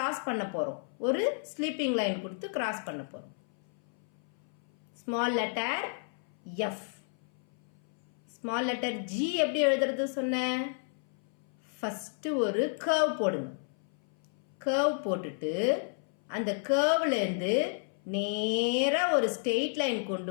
பண்ண போறோம். ஒரு ஸ்லீப்பிங் லைன் கொடுத்து கிராஸ் பண்ண போறோம். Small letter F. Small letter G எப்படி எழுதுறது சொன்னேன்? ஃபர்ஸ்ட் ஒரு கர்வ் போடுங்க. கர்வ் போட்டுட்டு அந்த கர்வ்ல இருந்து நேரா ஒரு ஸ்ட்ரெயிட் லைன்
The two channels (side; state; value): right; silent; 57 dB below the other